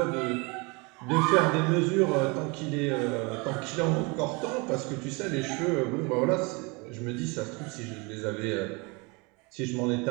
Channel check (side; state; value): left; quieter; 28.5 dB